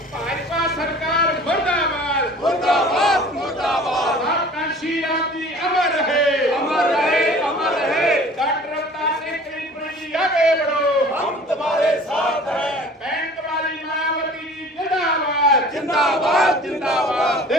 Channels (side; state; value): both; normal; correlation 0.46